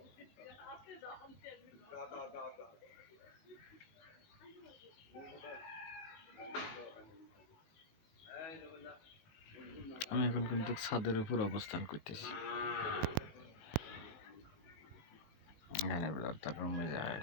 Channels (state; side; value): late; right; 19 ms